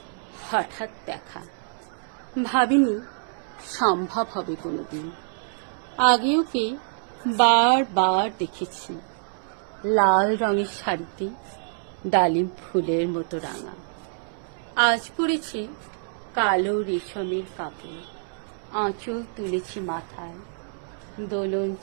হঠাৎ দেখা, ভাবিনি সম্ভব হবে কোনোদিন। আগে ওকে বারবার দেখেছি, লাল রঙের শাড়িতে ডালিম ফুলের মতো রাঙা। আজ পরেছে কালো রেশমের কাপড়, আঁচল তুলেছি মাথায়, দোলন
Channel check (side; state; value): left; silent; 61 dB below the other